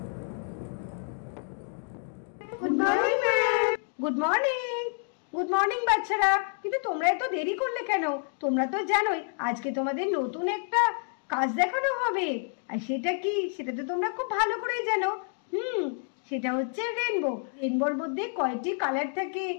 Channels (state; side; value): silent; right; 56 dB below the other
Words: Good morning ma'am. Good morning. Good morning বাচ্চারা, কিন্তু তোমরা এত দেরি করলে কেন? তোমরা তো জানোই আজকে তোমাদের নতুন একটা কাজ দেখানো হবে। আর সেটা কি, সেটা তো তোমরা খুব ভালো করেই জানো। সেটা হচ্ছে রেনবো। রেনবোর মধ্যে কয়টি কালার থাকে,